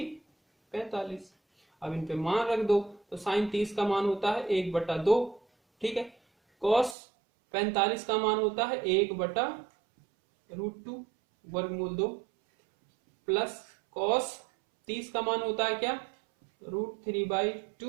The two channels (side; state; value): left; drops out; at 7.0 s